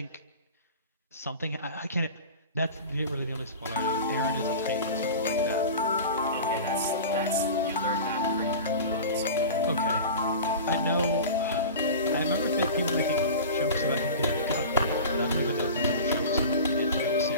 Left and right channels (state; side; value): inverted; both; correlation -0.33